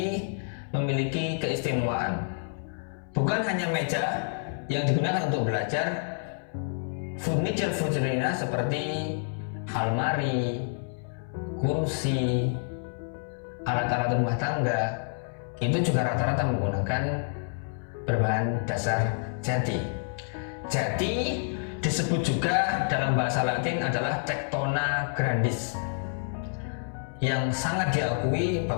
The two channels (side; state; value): right; silent; 59 dB below the other